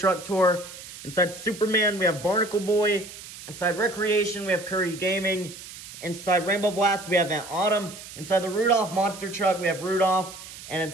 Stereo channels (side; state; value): right; noise; hiss, 14 dB below the sound